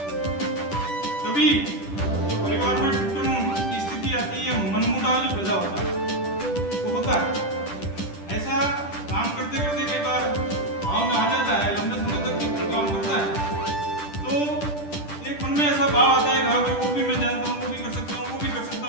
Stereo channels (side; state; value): right; late; 10 ms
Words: तभी जो परिवार में टूटन की स्थिति आती है, मनमुटाव जो पैदा होता है वो होता है। ऐसा काम करते करते कई बार भाव में आ जाता है, लंबे समय तक कोई काम करता है तो एक मन में ऐसा भाव आता है हाँ भाई वो भी मैं जानता हूँ, वो भी कर सकता हूँ, वो भी कर सकता